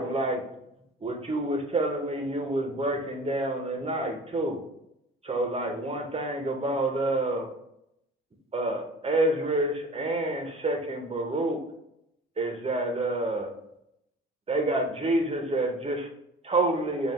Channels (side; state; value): both; normal; correlation 0.42